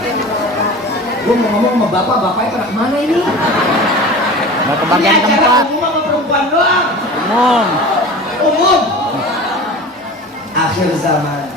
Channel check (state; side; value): normal; both; correlation 0.36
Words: Gue mau ngomong sama bapaknya pada kemana ini? Mau ke bagian ini tempat. acara umum sama perempuan doang. Umum. Akhir zaman.